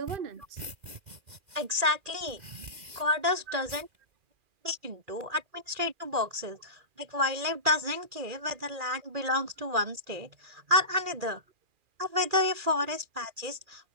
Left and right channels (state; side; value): late; left; 2.4 ms